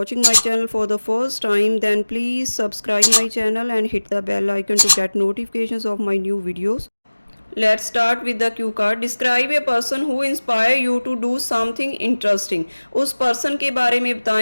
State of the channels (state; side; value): inverted; both; correlation -1.00